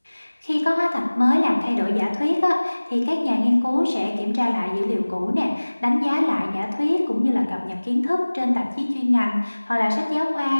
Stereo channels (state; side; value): inverted; both; correlation -1.00